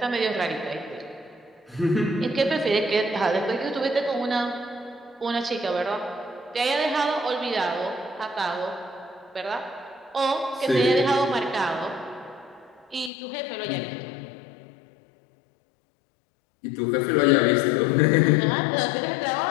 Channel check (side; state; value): right; drops out; at 13.1 s